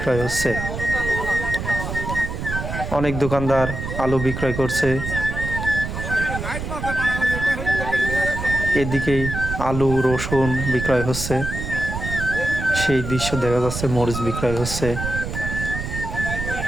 হচ্ছে। অনেক দোকানদার আলু বিক্রয় করছে। এদিকেই আলু রসুন বিক্রয় হচ্ছে, সেই দৃশ্য দেখা যাচ্ছে। মরিচ বিক্রয় হচ্ছে।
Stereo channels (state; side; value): noise; right; rumble, 5 dB below the sound